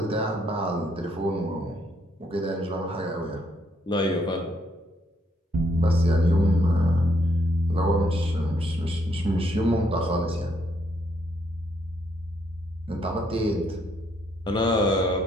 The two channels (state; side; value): normal; both; correlation 0.72